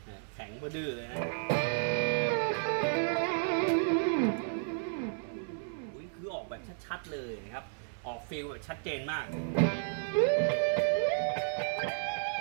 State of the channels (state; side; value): silent; left; 56 dB below the other